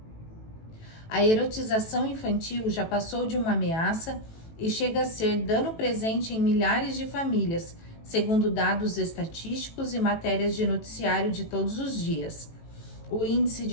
A erotização infantil já passou de uma ameaça e chega a ser dano presente em milhares de famílias, segundo dados estatísticos e matérias de noticiário de todos os dias. O índice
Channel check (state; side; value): late; right; 18 ms